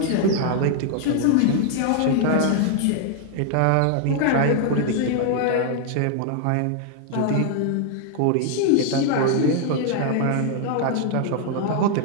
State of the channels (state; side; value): different; both; correlation 0.00